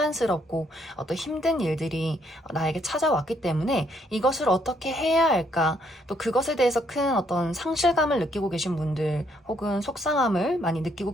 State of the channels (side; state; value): both; normal; correlation 0.71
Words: 어떤 힘든 일들이 나에게 찾아왔기 때문에 이것을 어떻게 해야 할까, 또 그것에 대해서 큰 어떤 상실감을 느끼고 계신 분들 혹은 속상함을 많이 느끼고